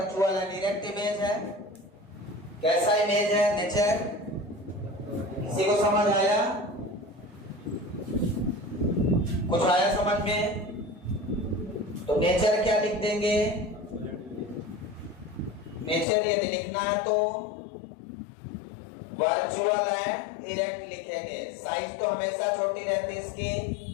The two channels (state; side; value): drops out; right; at 16.1 s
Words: डायरेक्ट इमेज है। कैसा इमेज है? नेचर। किसी को समझ आया? कुछ आया समझ में? तो नेचर क्या लिख देंगे? नेचर यदि लिखना है तो वर्चुअल एंड इरेक्ट लिखेंगे। साइज तो हमेशा छोटी रहती है इसकी।